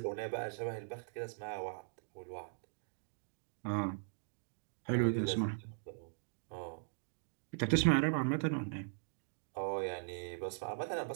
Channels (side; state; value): left; silent; digital silence